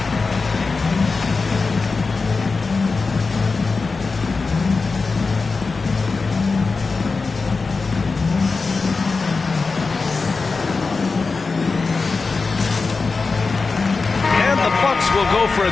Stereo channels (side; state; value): right; quieter; 4.2 dB